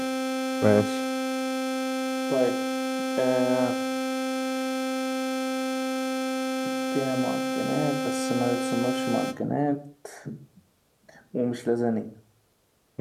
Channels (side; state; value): both; identical; correlation 1.00